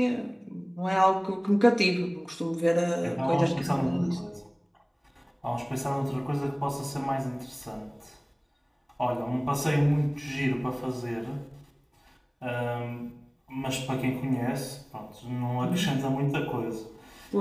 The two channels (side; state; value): both; identical; correlation 1.00